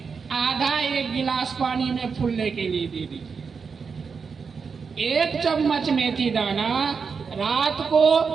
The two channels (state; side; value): quieter; left; 5.6 dB